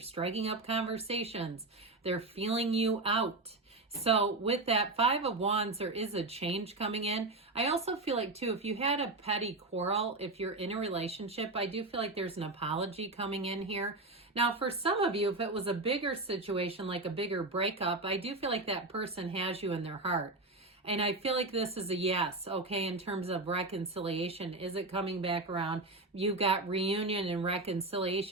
up conversations. They're feeling you out. So with that 5 of Wands, there is a change coming in. I also feel like too, if you had a petty quarrel, if you're in a relationship, I do feel like there's an apology coming in here. Now, for some of you, if it was a bigger situation, like a bigger breakup, I do feel like that person has you in their heart. And I feel like this is a yes, okay, in terms of reconciliation. Is it coming back around? You've got reunion and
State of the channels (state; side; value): quieter; left; 3.1 dB